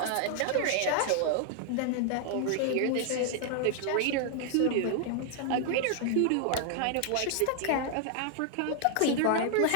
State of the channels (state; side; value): different; both; correlation 0.00